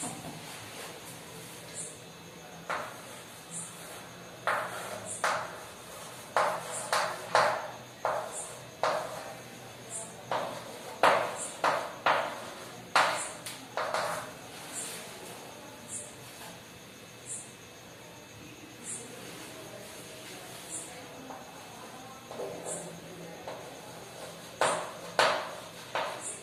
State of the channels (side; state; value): both; identical; correlation 1.00